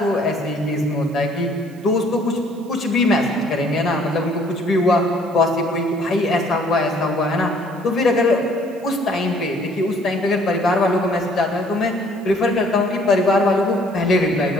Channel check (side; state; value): right; noise; hiss, 28 dB below the sound